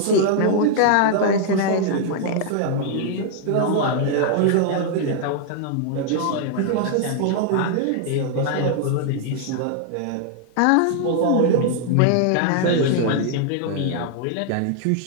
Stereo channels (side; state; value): both; different; correlation -0.01